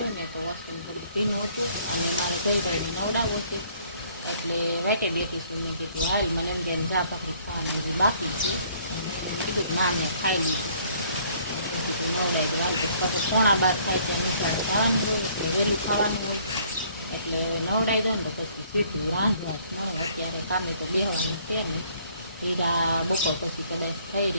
ને તો વોશરૂમ થોડુંક ભીનું હતું અને મારે જયભાઈને નવડાવવું છે એટલે વાટે બેઠી છું. મેં કીધું હાલ મને એમ કે ચા ભાખરી ખાવાની બીજી બાકી છે. કીધું ના મેં ખાઈ લીધું. કીધું નવડાવી દઉં હાલ પછી 11:15 થાય ત્યાં નિશાળે ખાવાનું હોય એટલે વહેલું ખાવાનું હોય એટલે નવડાવી દો ને તો પછી સીધું રાંધવા જ મળે. અત્યારે કામે તો બેહવાનું છે ને હીરા બપોર પછી કદાચ થઈ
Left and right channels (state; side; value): inverted; both; correlation -0.61